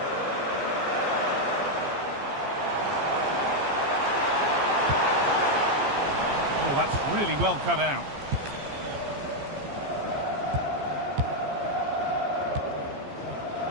Oh, that's really well cut out.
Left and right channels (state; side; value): late; left; 15 ms